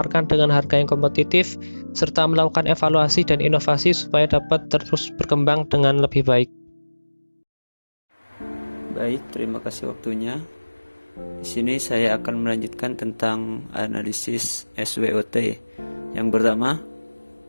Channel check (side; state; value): both; inverted; correlation -1.00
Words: dengan harga yang kompetitif, serta melakukan evaluasi dan inovasi supaya dapat terus berkembang dengan lebih baik. Baik, terima kasih waktunya. Di sini saya akan melanjutkan tentang analisis SWOT. Yang pertama,